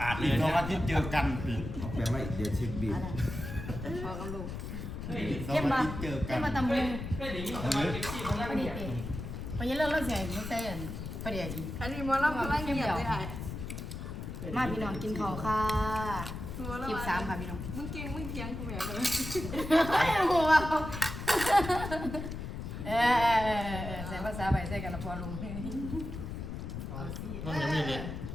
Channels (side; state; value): left; noise; rumble, 7 dB below the sound